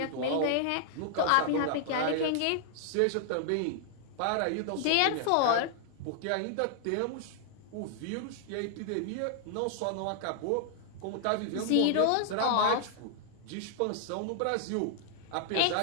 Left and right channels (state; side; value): different; both; correlation -0.01